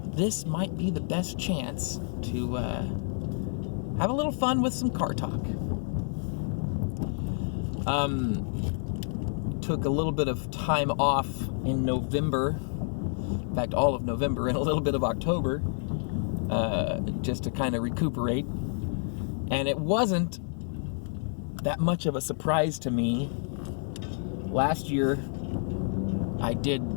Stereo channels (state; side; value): silent; right; 59 dB below the other